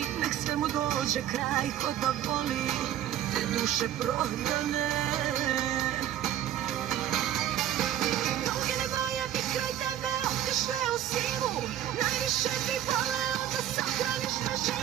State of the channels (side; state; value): left; quieter; 11.6 dB